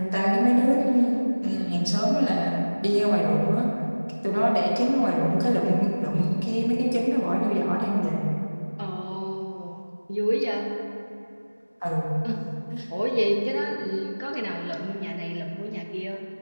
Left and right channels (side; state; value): both; inverted; correlation -1.00